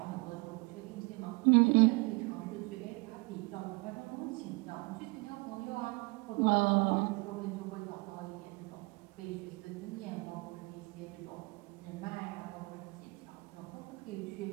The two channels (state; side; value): quieter; left; 27.9 dB